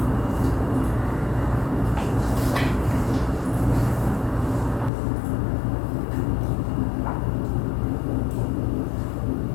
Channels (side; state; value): right; drops out; at 4.9 s